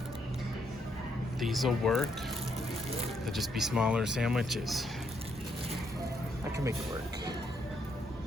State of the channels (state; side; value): normal; both; correlation 0.75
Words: These'll work. They'll just be smaller sandwiches. I can make it work.